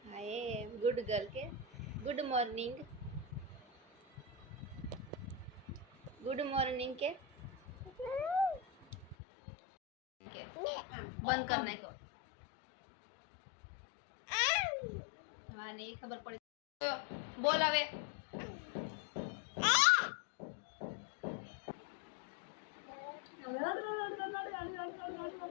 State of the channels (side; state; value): right; drops out; at 9.2 s